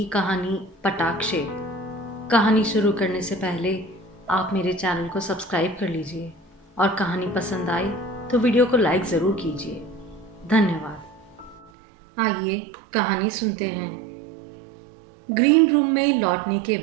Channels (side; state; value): left; drops out; at 11.7 s